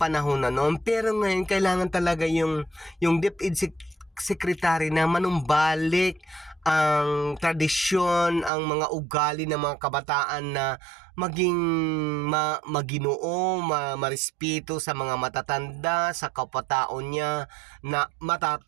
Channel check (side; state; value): left; drops out; at 8.5 s